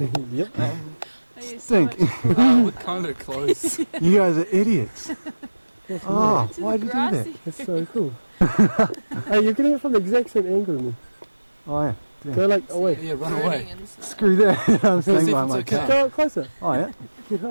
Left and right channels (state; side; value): inverted; both; correlation -1.00